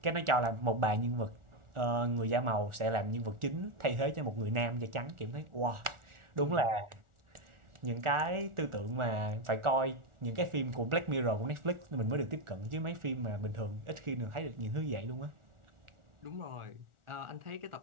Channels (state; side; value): late; left; 1.4 ms